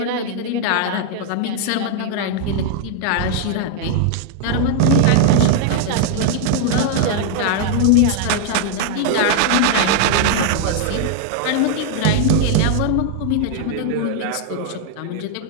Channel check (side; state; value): both; different; correlation 0.00